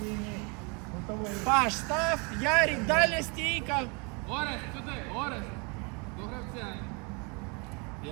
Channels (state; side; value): quieter; left; 32.2 dB